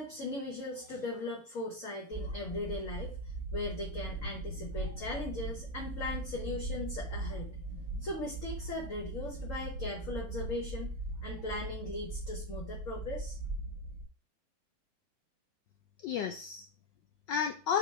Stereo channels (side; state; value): both; normal; correlation 0.07